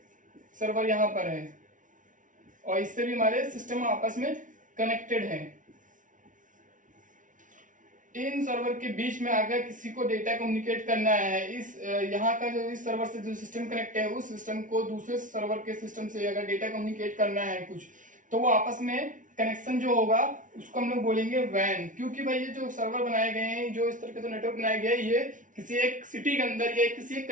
सर्वर यहां पर है और इससे भी हमारे सिस्टम आपस में कनेक्टेड हैं। इन सर्वर के बीच में अगर किसी को डेटा कम्युनिकेट करना है, इस यहाँ का जो इस सर्वर से जो सिस्टम कनेक्ट है उस सिस्टम को दूसरे सर्वर के सिस्टम से अगर डेटा कम्युनिकेट करना है कुछ, तो वो आपस में कनेक्शन जो होगा उसको हम लोग बोलेंगे वैन। क्योंकि भाई ये जो सर्वर बनाए गए हैं, जो इस तरह के जो नेटवर्क बनाए गए हैं, ये किसी एक सिटी के अंदर या किसी एक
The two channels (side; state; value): left; late; 0.38 ms